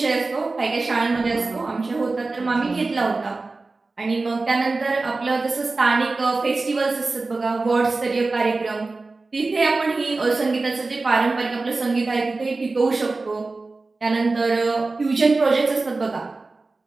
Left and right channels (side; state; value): left; quieter; 3.6 dB